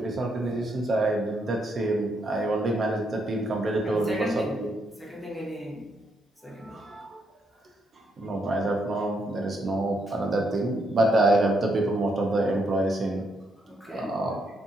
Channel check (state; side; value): normal; both; correlation 0.77